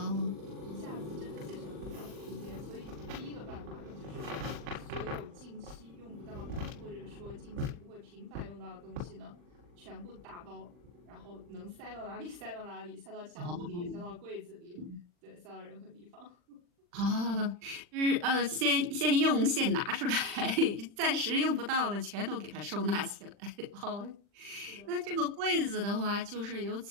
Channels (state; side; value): late; left; 40 ms